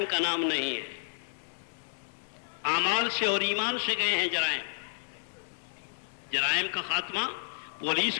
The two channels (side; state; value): right; silent; digital silence